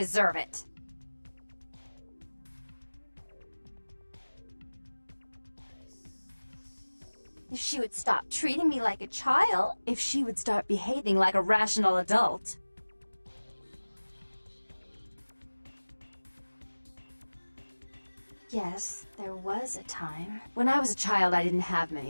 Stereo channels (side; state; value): both; inverted; correlation -1.00